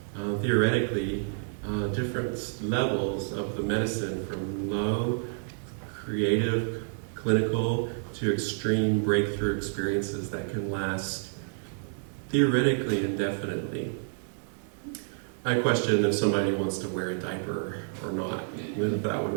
theoretically, different levels of the medicine from low, creative, clinical to extreme breakthrough experiences that can last theoretically indefinitely. I question if somebody wants to wear a diaper or not. If that would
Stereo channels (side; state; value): left; silent; digital silence